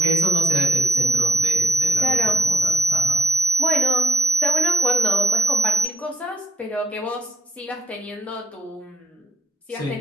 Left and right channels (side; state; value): both; normal; correlation 0.79